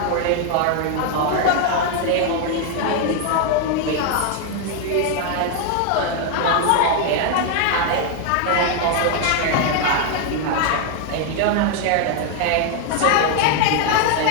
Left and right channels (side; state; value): both; different; correlation 0.00